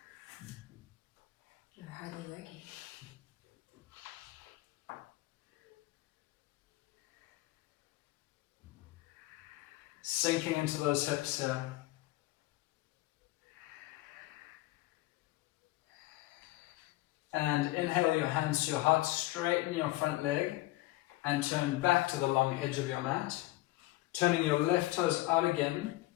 You're hardly working. Sinking into those hips here. And inhale your hands to your heart, straighten your front leg and turn back to the long edge of your mat. Turning your left toes out again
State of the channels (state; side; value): quieter; right; 18.3 dB